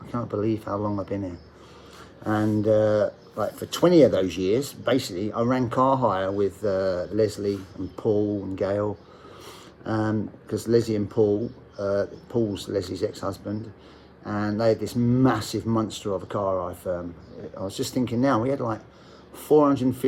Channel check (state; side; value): identical; both; correlation 1.00